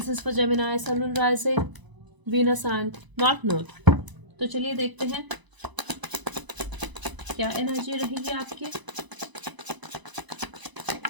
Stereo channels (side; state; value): left; late; 1.0 ms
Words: is for Gemini, sun and rising, Venus and north node. तो चलिए देखते हैं क्या एनर्जी रहेगी आपकी।